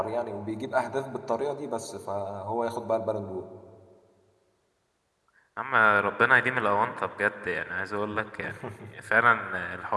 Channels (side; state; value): both; identical; correlation 1.00